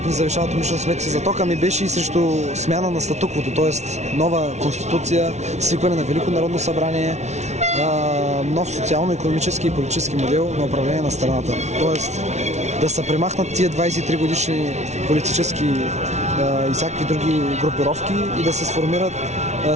ни завишават умишлено сметки за тока, ми беше и срещу смяна на статуквото, т.е. нова конституция, свикване на Велико народно събрание, нов социално-икономически и политически модел на управление на страната. Тоест да се премахнат тия 23 годишни политически и всякакви други групировки и да се сформират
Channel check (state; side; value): late; left; 0.32 ms